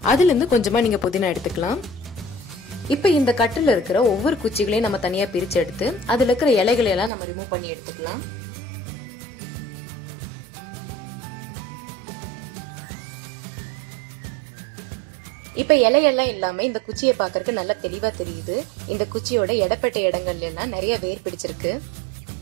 அதுல இருந்து கொஞ்சமா நீங்க புதினா எடுத்துக்கலாம். இப்போ இந்த கட்டுல இருக்கிற ஒவ்வொரு குச்சிகளையும் நம்ம தனியா பிரிச்சு எடுத்து அதுல இருக்கிற இலைகளை எல்லாம் நம்ம ரிமூவ் பண்ணி எடுத்துக்கலாம். இப்ப இலையெல்லாம் இல்லாம இந்த குச்சியை பாக்குறதுக்கு நல்லா தெளிவா தெரியுது. இந்த குச்சியோட இடப்பட்ட இடங்கள்ல எல்லாம் நிறைய வேர் பிடிச்சிருக்கு.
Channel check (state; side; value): drops out; left; at 7.1 s